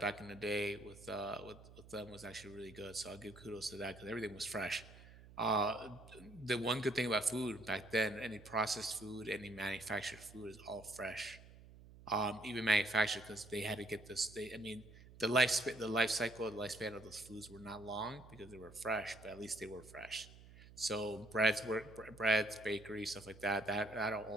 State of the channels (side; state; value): right; noise; hum, 19 dB below the sound